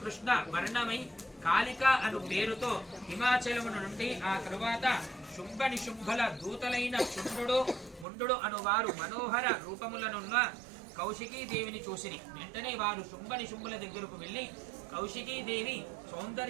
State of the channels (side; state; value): left; drops out; at 8.1 s